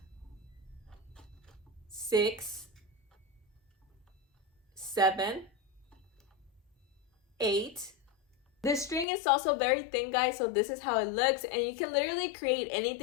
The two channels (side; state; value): right; drops out; at 9.1 s